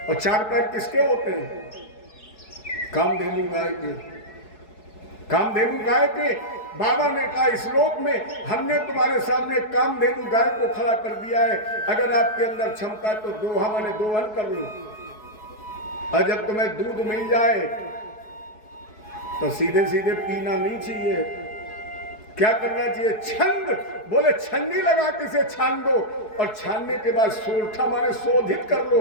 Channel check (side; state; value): right; late; 4.7 ms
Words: और 4 पैर किसके होते हैं? कामधेनु गाय के। कामधेनु गाय के। बाबा ने कहा इस लोक में हमने तुम्हारे सामने कामधेनु गाय को खड़ा कर दिया है। अगर आपके अंदर क्षमता तो दोहा माने दोहन कर लो, और जब तुम्हें दूध मिल जाए तो सीधे सीधे पीना नहीं चाहिए। क्या करना चाहिए? छंद, बोले छन्नी लगा के इसे छान दो, और छानने के बाद सोरठा माने शोधित कर लो।